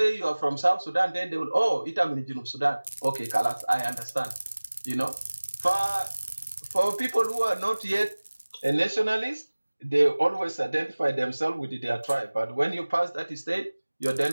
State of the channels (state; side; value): inverted; both; correlation -1.00